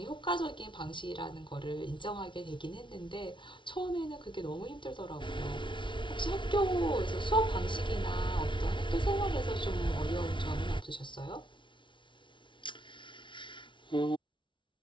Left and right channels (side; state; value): right; late; 0.24 ms